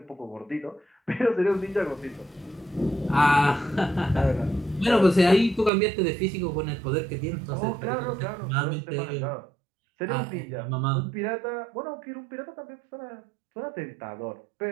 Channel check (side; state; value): left; drops out; at 5.7 s